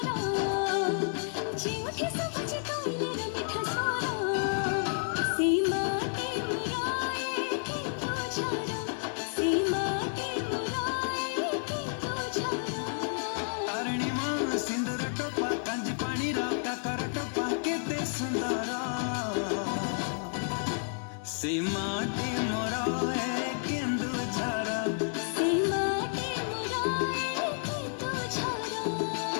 ଯେଉଁଠି ସବୁଛି କୋଇଲିର ମିଠା ସ୍ୱର, ସେ ମାଟି ମୋର ଏ କେନ୍ଦୁଝର, ସେ ମାଟି ମୋର ଏ କେନ୍ଦୁଝର। ତାରିଣୀ ମା ସିନ୍ଦୁର ଟୋପା, କାଞ୍ଜି ପାଣିର କାକର ଟୋପା, କେତେ ସୁନ୍ଦର, ସେ ମାଟି ମୋର ଏ କେନ୍ଦୁଝର। ସେ ମାଟି ମୋର ଏ କେନ୍ଦୁଝର।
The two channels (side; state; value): right; silent; digital silence